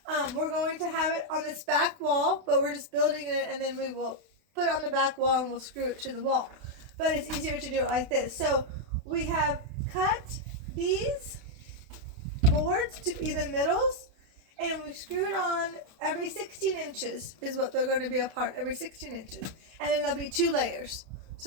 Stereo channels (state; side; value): late; left; 32 ms